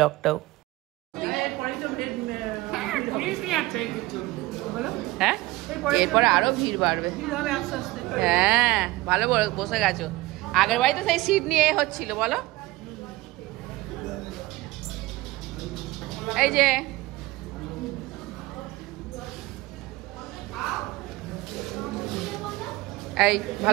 হ্যাঁ, এরপরে আরো ভিড় বাড়বে। হ্যাঁ, ভালো বসে গেছো। আগের বাড়িতে সেই সিট নিয়ে হচ্ছিল বলো। এই যে এই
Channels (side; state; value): left; quieter; 19.3 dB